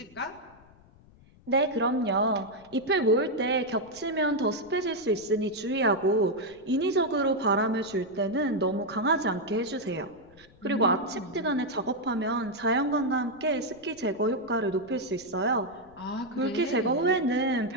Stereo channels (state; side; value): noise; left; rumble, 26 dB below the sound